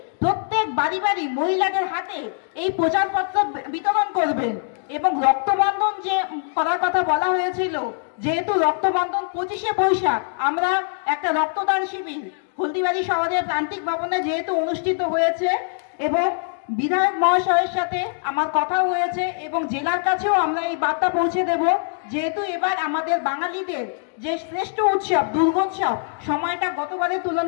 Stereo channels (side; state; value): right; silent; digital silence